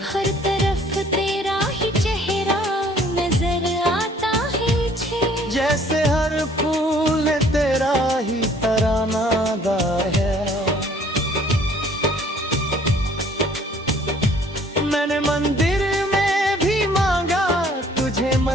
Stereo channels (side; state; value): both; normal; correlation 0.57